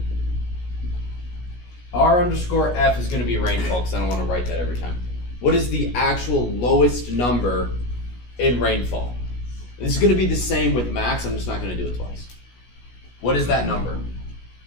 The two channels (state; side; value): late; right; 17 ms